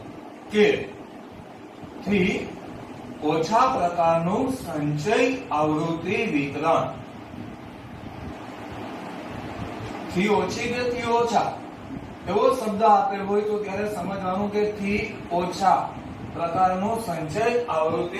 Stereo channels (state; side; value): identical; both; correlation 1.00